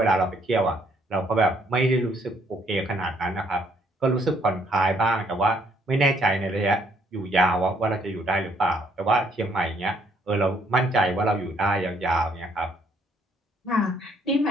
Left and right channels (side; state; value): both; normal; correlation 0.67